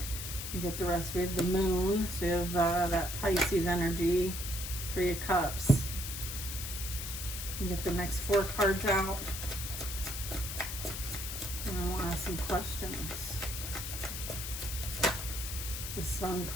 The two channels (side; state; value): left; noise; hiss, 6 dB below the sound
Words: We get the rest. We have the Moon. So we have that Pisces energy. 3 of Cups. You get the next 4 cards out. And I will ask some questions. The Sun